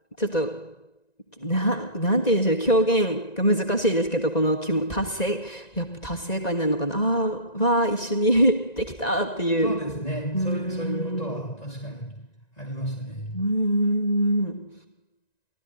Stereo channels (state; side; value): late; right; 1.9 ms